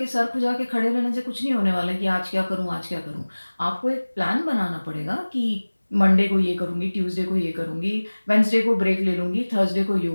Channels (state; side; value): inverted; both; correlation -1.00